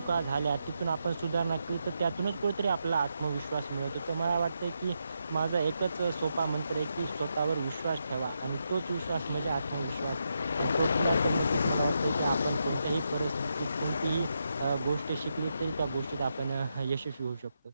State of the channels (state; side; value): inverted; both; correlation -0.83